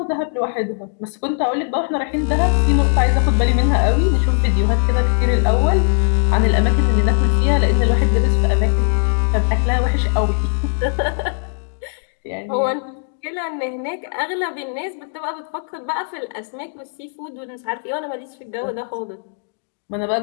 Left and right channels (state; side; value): silent; right; digital silence